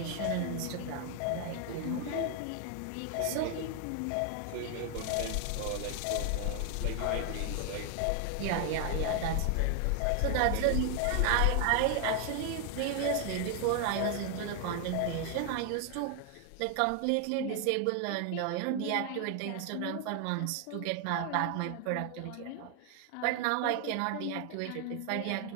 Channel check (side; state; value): both; different; correlation 0.00